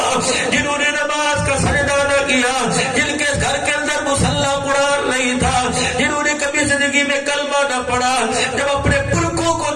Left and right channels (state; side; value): identical; both; correlation 1.00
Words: جنہوں نے نماز کا سجدہ نہ کیا، جن کے گھر کے اندر مصلی قرآن نہیں تھا، جنہوں نے کبھی زندگی میں کلمہ نہ پڑھا، جب اپنے پلکوں کو